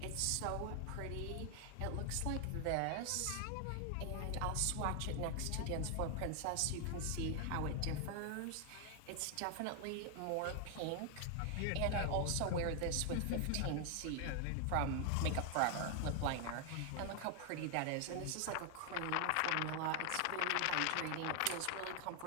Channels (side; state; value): both; different; correlation 0.00